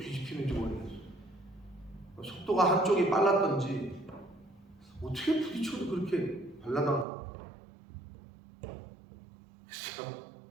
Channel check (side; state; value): left; drops out; at 7.1 s